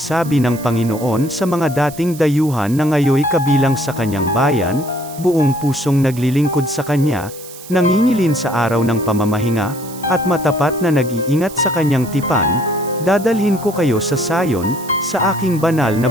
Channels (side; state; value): right; noise; hiss, 16 dB below the sound